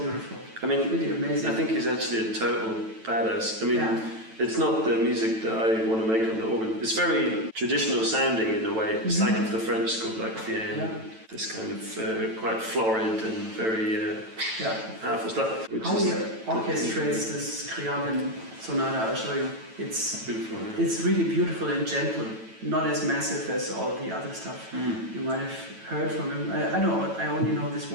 I mean, really amazing. I think he's actually a total badass. I mean, it's not the music that I want to make on the organ. It's very traditional sounding in a way. It's like of the French school, like Vienne. This kind of quite florid and very powerful stuff. How he orchestrates this Scriabin sonata, I'll show you. It's beautiful. Yeah. It's really beautiful and gentle. Not as massive as all the other stuff. You might have heard from him. I only know this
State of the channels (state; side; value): late; left; 9.1 ms